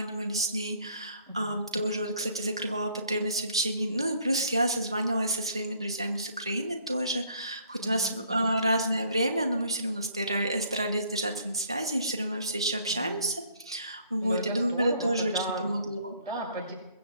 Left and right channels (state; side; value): inverted; both; correlation -0.62